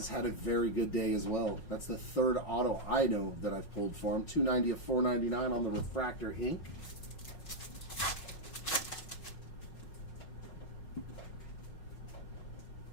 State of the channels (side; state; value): right; late; 5.5 ms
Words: had a very good day as well. That's the third auto I know that I've pulled for him. 290 of 499 on the refractor ink.